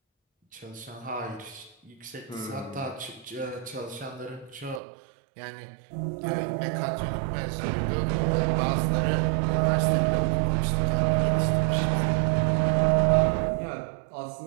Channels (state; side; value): drops out; left; at 4.8 s